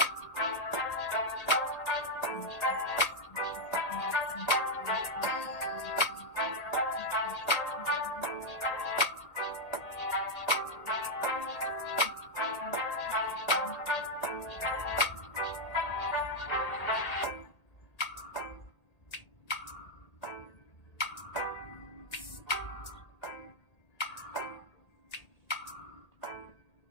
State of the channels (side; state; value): right; late; 1.8 ms